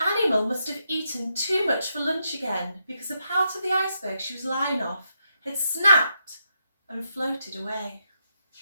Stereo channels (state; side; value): inverted; both; correlation -0.82